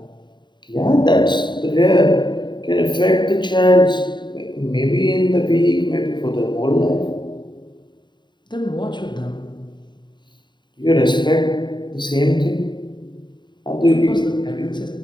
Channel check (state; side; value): late; right; 0.22 ms